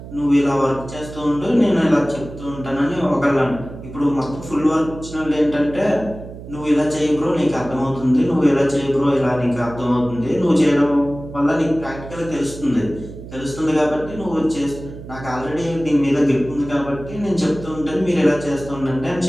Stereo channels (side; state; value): right; noise; hum, 13 dB below the sound